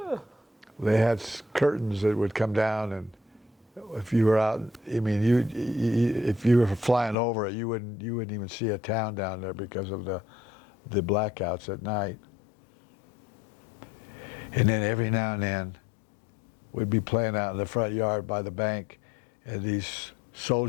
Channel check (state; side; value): drops out; right; at 7.2 s